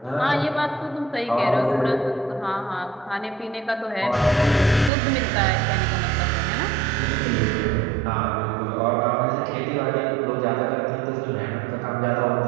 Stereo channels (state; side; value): drops out; left; at 4.9 s